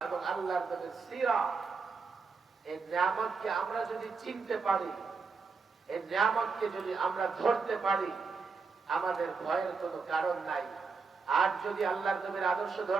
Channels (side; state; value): left; quieter; 4.8 dB